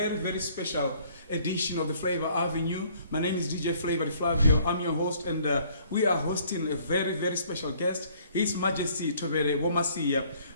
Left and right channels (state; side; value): inverted; both; correlation -0.60